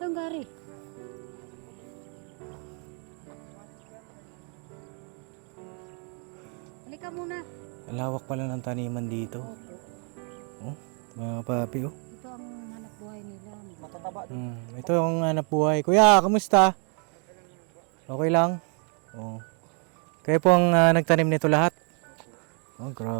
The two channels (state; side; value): quieter; left; 38.9 dB